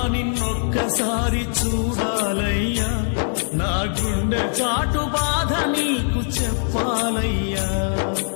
నిన్నొక్కసారి చూడాలయ్యా, నా గుండె చాటు బాధ నీకు చెప్పాలయ్యా.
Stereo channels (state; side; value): silent; right; digital silence